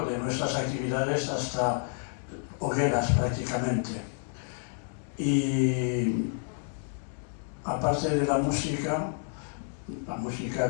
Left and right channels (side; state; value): right; silent; digital silence